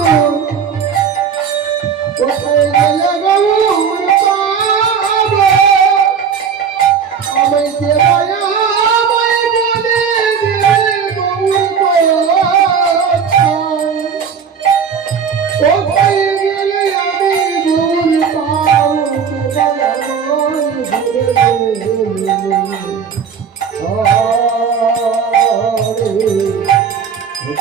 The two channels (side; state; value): left; quieter; 6.7 dB